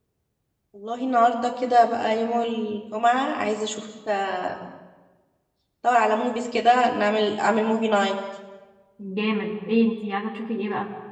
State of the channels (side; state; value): both; identical; correlation 1.00